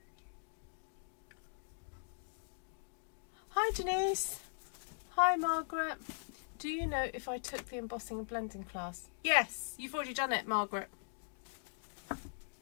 Hi Denise. Hi Margaret. Do you know if I took the embossing and blending class? Yes, you've already done it, Margaret.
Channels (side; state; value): right; silent; digital silence